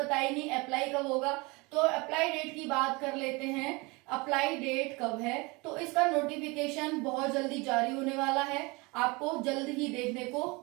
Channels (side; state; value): left; quieter; 26.1 dB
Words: नहीं, अप्लाई कब होगा। तो अप्लाई डेट की बात कर लेते हैं अप्लाई डेट कब है, तो इसका नोटिफिकेशन बहुत जल्दी जारी होने वाला है, आपको जल्द ही देखने को